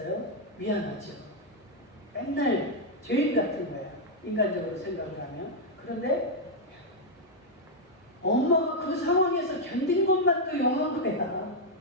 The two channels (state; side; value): normal; both; correlation -0.02